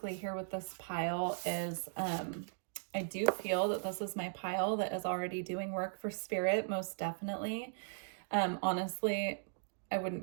here with this pile is I do feel that this is my pile that is already doing work for spirit, most definitely. Honestly, I wouldn't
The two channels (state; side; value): silent; left; digital silence